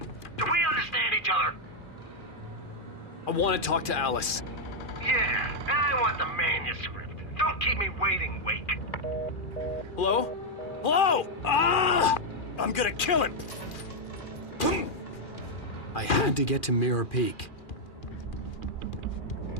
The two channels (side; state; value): right; late; 2.4 ms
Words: Do we understand each other? I want to talk to Alice. Yeah, and I want the manuscript. Don't keep me waiting, Wake. Hello? Hello! Ah! I'm gonna kill him! I had to get to Mirror Peak.